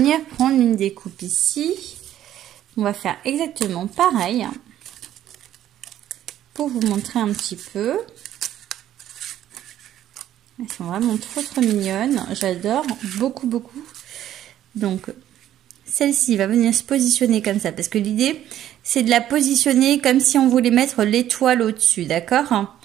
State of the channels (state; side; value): quieter; left; 11.9 dB